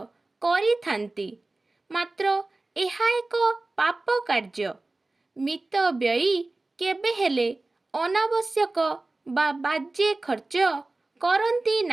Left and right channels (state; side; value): quieter; left; 3.1 dB